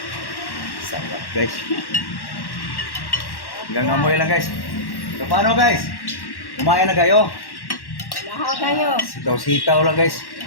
Sarap guys. Hanggang amoy lang guys. So paano guys? Kumain na kayo? Lahaw kayo. Sitaw-sitaw lang guys.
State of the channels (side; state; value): right; late; 1.1 ms